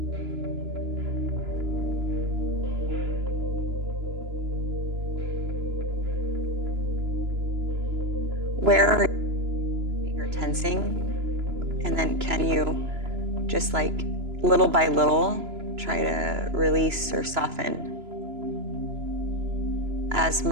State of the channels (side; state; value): left; late; 2.9 ms